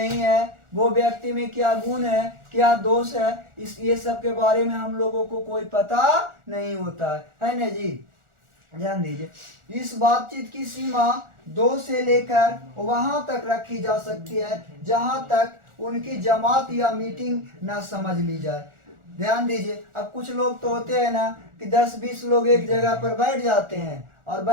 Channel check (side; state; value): left; late; 1.4 ms